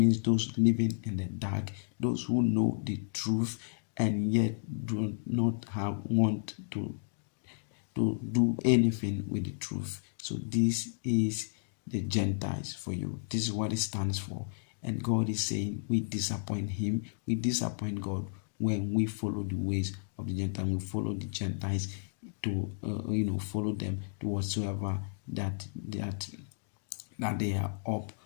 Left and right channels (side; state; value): right; silent; digital silence